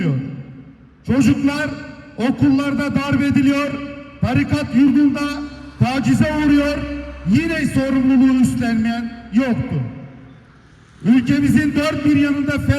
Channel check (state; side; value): identical; both; correlation 1.00